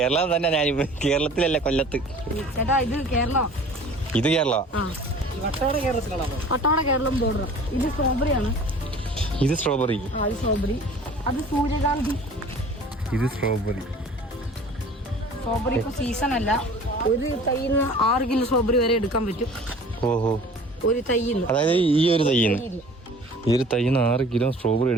തന്നെ. ഞാൻ കേരളത്തിലല്ല, കൊല്ലത്ത്. ഇത് കേരള. ഇത് സ്ട്രോബെറി. അത് സൂര്യകാന്തി. ഇത് സ്ട്രോബെറി. സ്ട്രോബെറി ഇപ്പൊ സീസൺ അല്ല. ഒരു തൈന്ന് 6 കിലോ സ്ട്രോബെറി വരെ എടുക്കാൻ പറ്റും. ഓഹോ. ഒരു തൈന്ന്, അതായത് ഈ ഒരു തൈന്ന് 6 കിലോ സ്ട്രോബെറി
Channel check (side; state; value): both; normal; correlation 0.46